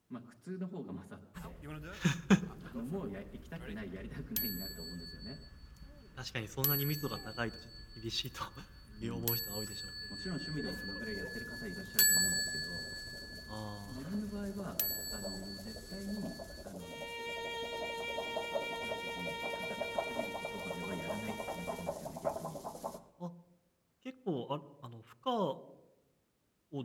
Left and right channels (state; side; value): identical; both; correlation 1.00